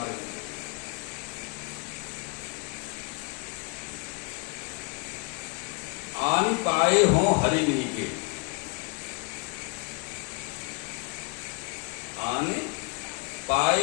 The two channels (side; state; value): right; quieter; 32.3 dB